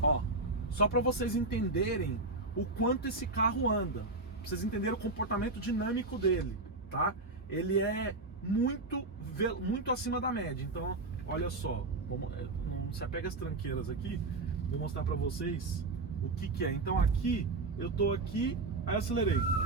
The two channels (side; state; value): left; quieter; 3.2 dB